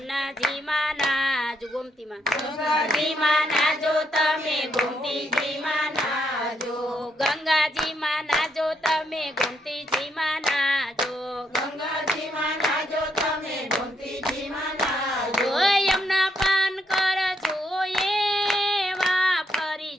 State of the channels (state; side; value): normal; both; correlation 0.77